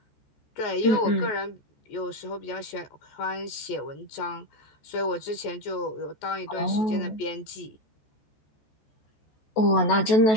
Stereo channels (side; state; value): right; late; 14 ms